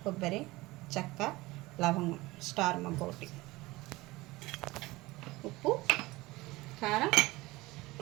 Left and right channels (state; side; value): quieter; left; 20.6 dB